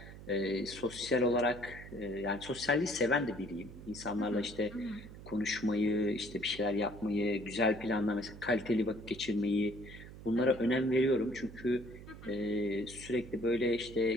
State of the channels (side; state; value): right; noise; hum, 15 dB below the sound